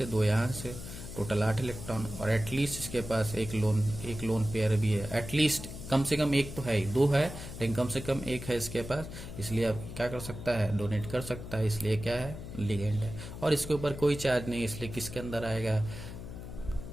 2 यहाँ से, टोटल 8 इलेक्ट्रॉन, और एटलीस्ट इसके पास एक लोन पेयर भी है, एटलीस्ट कम से कम एक तो है ही, दो है लेकिन कम से कम एक है इसके पास, इसलिए अब क्या कर सकता है, डोनेट कर सकता है, इसलिए क्या है, लिगेंड है। और इसके ऊपर कोई चार्ज नहीं, इसलिए किसके अंदर आएगा,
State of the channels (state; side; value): noise; left; hum, 10 dB below the sound